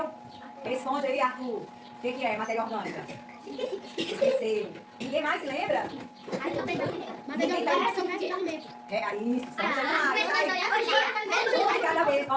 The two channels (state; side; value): identical; both; correlation 1.00